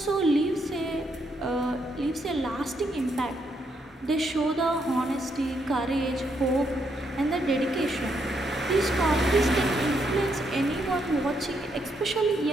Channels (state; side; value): normal; both; correlation 0.76